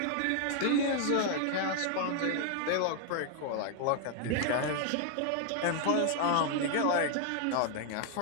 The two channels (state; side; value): different; both; correlation 0.00